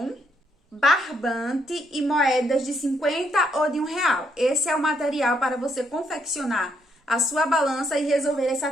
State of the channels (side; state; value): both; normal; correlation 0.74